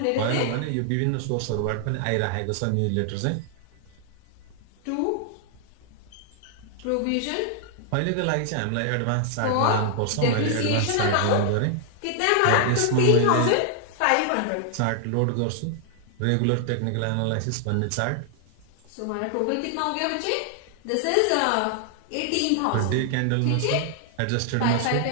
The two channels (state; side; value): different; both; correlation 0.00